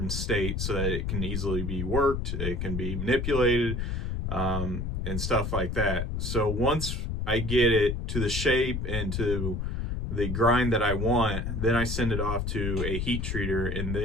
state so that it can easily be worked, it can be manipulated, and stuff like that. So once I get it to the shape and to the grind that I want, then I send it off to a heat treater and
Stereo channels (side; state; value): left; noise; rumble, 2 dB below the sound